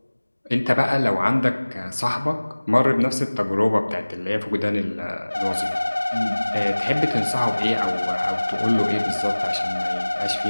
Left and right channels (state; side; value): inverted; both; correlation -1.00